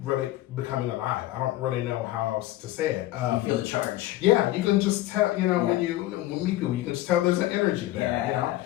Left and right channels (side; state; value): right; quieter; 15.8 dB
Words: really becoming alive. I don't really know how else to say it. You feel the charge. Yeah, you can just tell, when you meet people, you can just tell there's an energy there,